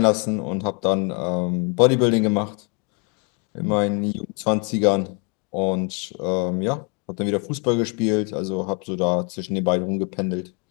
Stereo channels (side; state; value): right; quieter; 33.7 dB